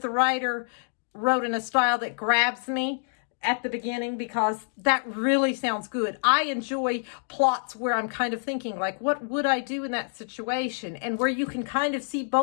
the writer wrote in a style that grabs me at the beginning, because that really sounds good. I enjoy plots where I'm kind of thinking, like, what would I do in that situation? And where you can kind of see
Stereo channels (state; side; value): silent; right; digital silence